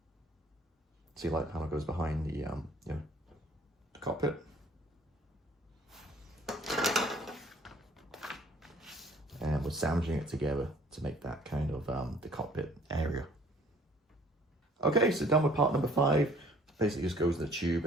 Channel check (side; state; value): both; normal; correlation 0.56